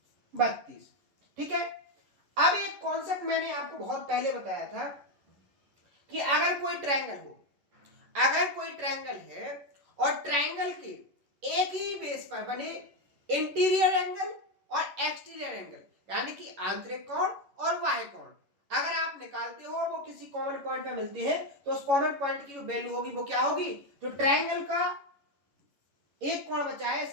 32। ठीक है, अब एक कॉन्सेप्ट मैंने आपको बहुत पहले बताया था कि अगर कोई ट्रायंगल हो, अगर कोई ट्रायंगल है और ट्रायंगल के एक ही बेस पर बने इंटीरियर एंगल और एक्सटीरियर एंगल, यानी कि आंतरिक कोण और बाह्य कोण, अगर आप निकालते हो और वो किसी कॉमन पॉइंट पे मिलते हैं, तो उस कॉमन पॉइंट की जो वैल्यू होगी वो क्या होगी, जो ट्रायंगल का एक कोण बचा है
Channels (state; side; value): late; left; 11 ms